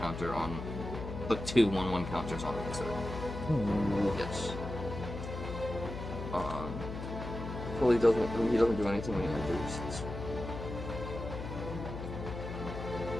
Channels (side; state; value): left; noise; hum, 7 dB below the sound